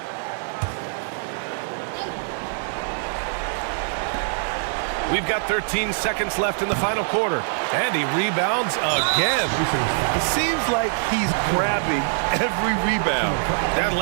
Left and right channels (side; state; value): left; silent; 63 dB below the other